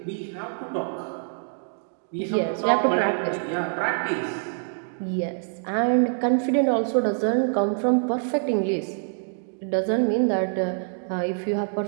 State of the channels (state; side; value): silent; left; digital silence